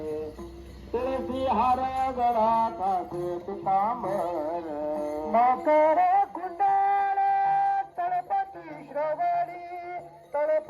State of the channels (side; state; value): both; identical; correlation 1.00